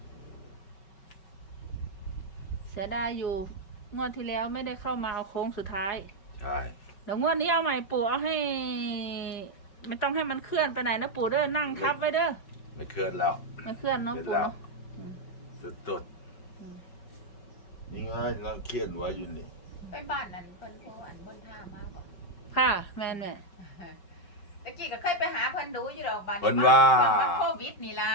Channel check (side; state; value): right; late; 5.3 ms